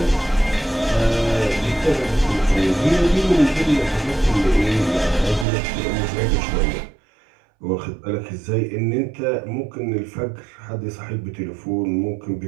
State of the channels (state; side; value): drops out; left; at 5.5 s